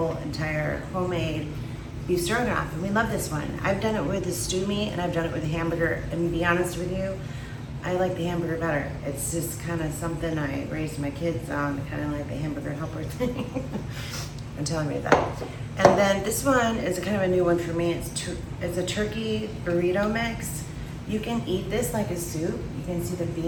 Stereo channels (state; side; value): identical; both; correlation 1.00